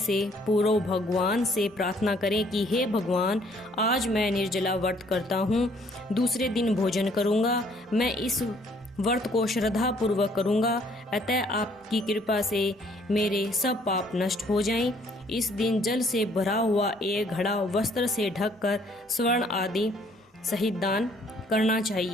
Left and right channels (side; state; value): both; normal; correlation 0.63